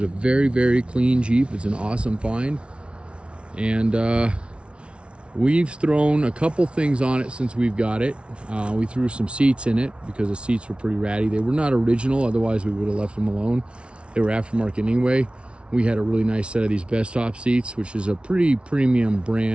a very, very clean Jeep. It's an awesome find. And we've thrown a couple things on it since we've got it. We threw some seats in it because the seats were pretty ratty. They were not original, otherwise we would have left them alone. They were aftermarket anyway. We had a really nice set of these Best Top seats, which is a pretty premium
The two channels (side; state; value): left; late; 0.059 ms